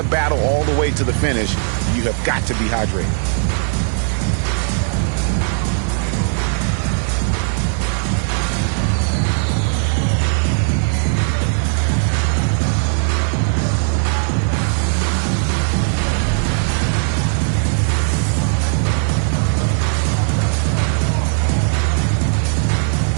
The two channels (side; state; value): left; silent; 58 dB below the other